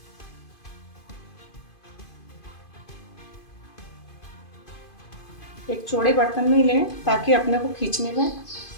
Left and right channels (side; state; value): right; late; 2.5 ms